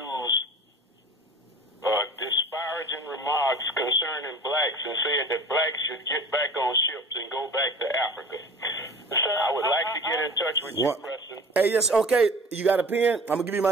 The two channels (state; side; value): normal; both; correlation 0.41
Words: disparaging remarks concerning blacks and said that blacks should get back on ships and go back to Africa. So I would like to get in touch with you, Preston. Hey, yes, okay. You got a pen? I'm going to give you my